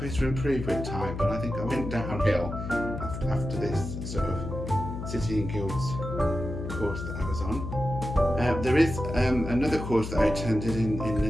to improve with time, but I think I went downhill after this sort of City and Guilds course that I was on. There is another course that I attended in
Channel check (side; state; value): left; noise; hum, 6 dB below the sound